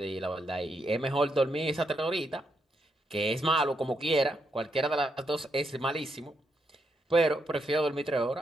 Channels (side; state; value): both; normal; correlation 0.80